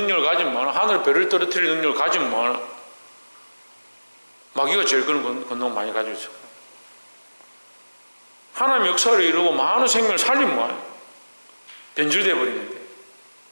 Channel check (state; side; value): inverted; both; correlation -1.00